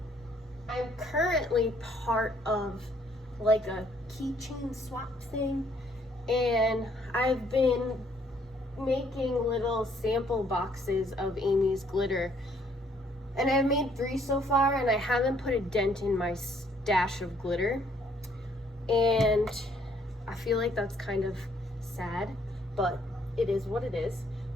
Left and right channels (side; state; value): both; normal; correlation 0.66